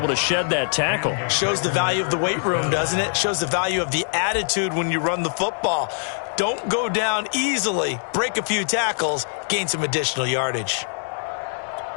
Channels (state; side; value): silent; right; digital silence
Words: to shed that tackle. Shows the value of the weight room, doesn't it? Shows the value of the attitude when you run the football. Don't go down easily. Break a few tackles, gain some additional yardage.